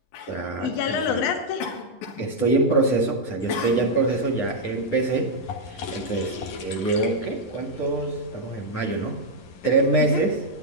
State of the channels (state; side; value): late; right; 10 ms